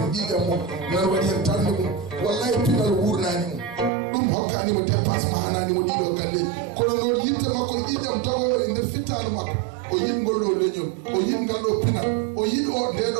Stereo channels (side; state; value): left; drops out; at 3.9 s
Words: ɓiiƴam mum nan waɗi hen tarde mum wallahi pinal wurnani mum ɗum hokkanimo dépense ma hananimo ɗiɗo galleji kono noon yitte makko ƴiƴam tagowo e nder fittanu makko o yiɗ ngol ɗo leñol o yiɗ ngal ɗo pinal o yiɗ o